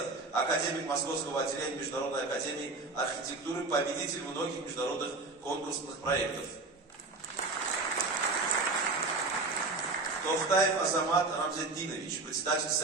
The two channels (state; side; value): quieter; left; 3.5 dB